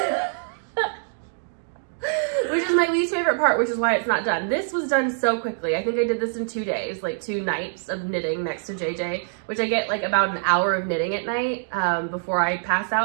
Which is my least favorite part, which is why it's not done. This was done so quickly. I think I did this in 2 days, like 2 nights of knitting next to JJ, which I get like about an hour of knitting at night before I pass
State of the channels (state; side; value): silent; left; digital silence